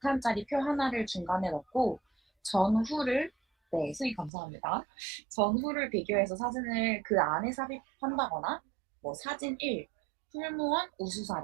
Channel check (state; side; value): drops out; left; at 4.3 s